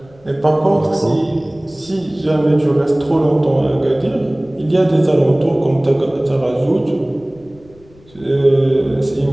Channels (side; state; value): left; noise; rumble, 27 dB below the sound